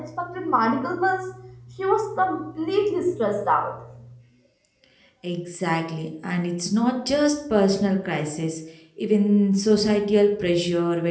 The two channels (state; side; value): identical; both; correlation 1.00